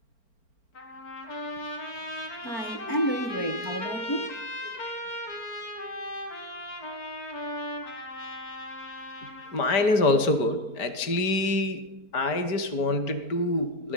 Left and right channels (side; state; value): right; late; 4.4 ms